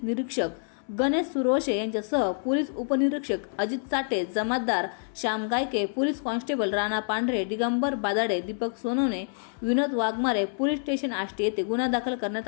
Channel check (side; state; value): right; silent; 60 dB below the other